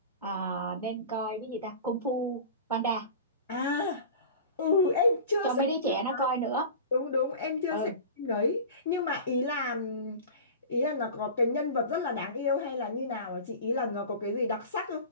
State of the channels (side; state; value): both; inverted; correlation -0.35